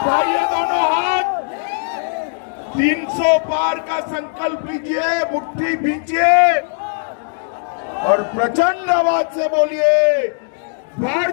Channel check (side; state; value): right; silent; digital silence